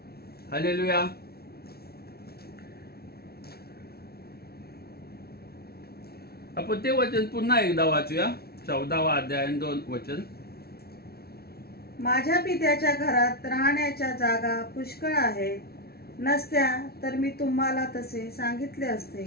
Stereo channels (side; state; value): right; late; 0.45 ms